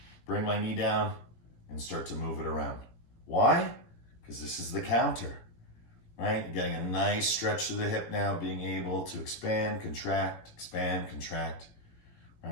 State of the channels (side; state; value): right; late; 18 ms